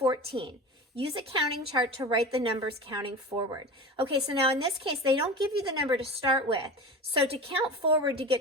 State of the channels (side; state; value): both; normal; correlation 0.30